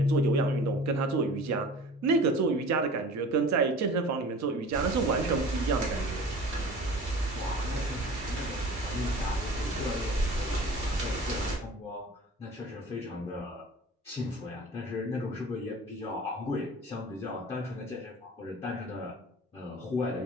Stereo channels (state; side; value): normal; both; correlation 0.42